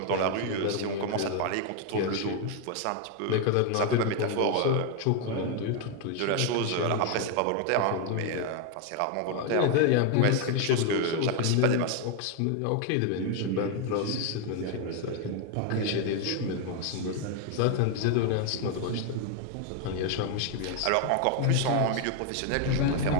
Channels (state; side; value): different; both; correlation 0.01